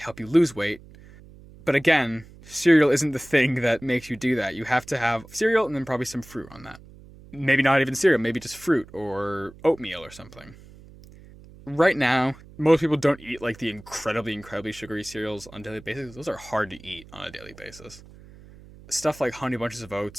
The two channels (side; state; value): right; noise; hum, 21 dB below the sound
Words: you lose weight. But again, cereal isn't the thing that makes you do that. You have to have cereal and then probably some fruit on that. Maybe not even cereal, maybe just fruit or oatmeal or something. Right now, most people don't eat the incredibly sugary cereals on a daily basis. Those are hard to eat on a daily basis. Stuff like Honey Bunches of